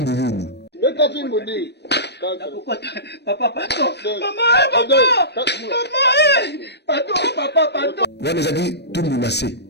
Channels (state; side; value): late; right; 0.49 ms